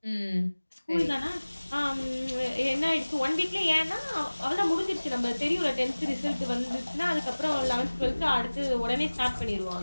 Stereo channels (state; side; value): inverted; both; correlation -1.00